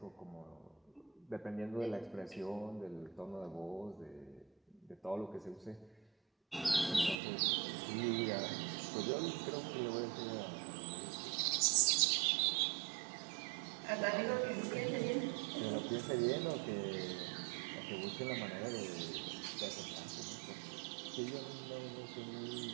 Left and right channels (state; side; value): drops out; left; at 7.2 s